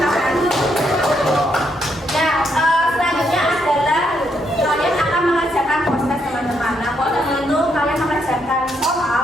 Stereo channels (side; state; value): both; normal; correlation 0.76